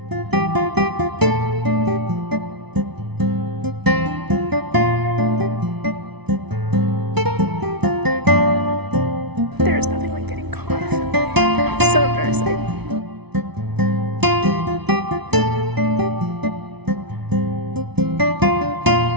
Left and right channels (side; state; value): left; late; 0.99 ms